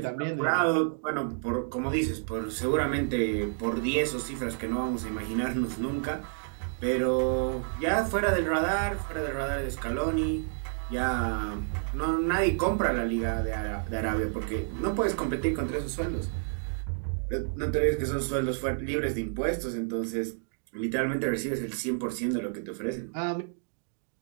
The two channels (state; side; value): silent; left; digital silence